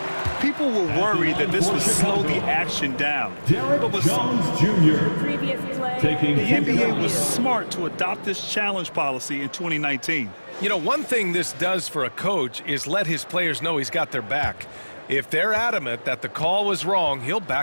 People were worried that this would slow the action down. Derek Jones Jr. taking the NBA was smart to adopt this challenge policy in 2019. You know, one thing this does for a coach is let his players know he's got their back. If they're adamant that the call was wrong, he'll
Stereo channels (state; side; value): inverted; both; correlation -1.00